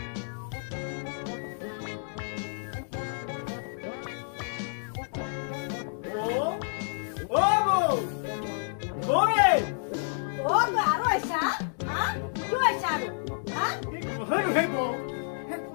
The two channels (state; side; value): silent; right; digital silence